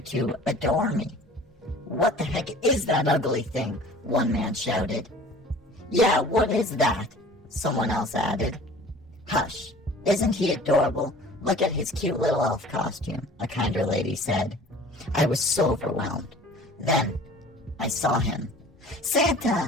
to adore me. What the heck is that ugly thing? One man shouted. Yeah, what is that? Someone else added. Hush, isn't he adorable? Look at his cute little elf costume, a kinder lady said. I was so overwhelmed. Then I saw him.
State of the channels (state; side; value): normal; both; correlation 0.46